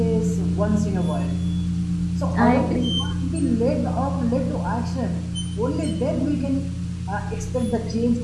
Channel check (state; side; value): identical; both; correlation 1.00